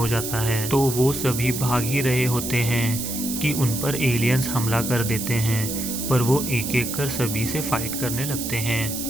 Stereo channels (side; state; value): right; noise; hiss, 5 dB below the sound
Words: जाता है। तो वो सभी भाग ही रहे होते हैं कि उन पर एलियंस हमला कर देते हैं, पर वो एक एक कर सभी से फाइट करने लगते